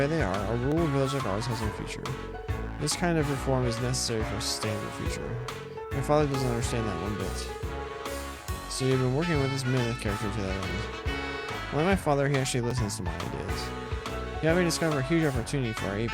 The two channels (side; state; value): both; identical; correlation 1.00